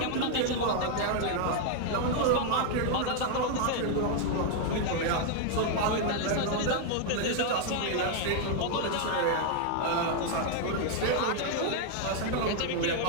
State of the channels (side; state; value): both; different; correlation 0.00